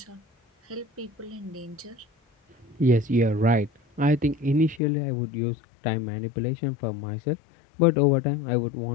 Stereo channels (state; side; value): drops out; right; at 4.8 s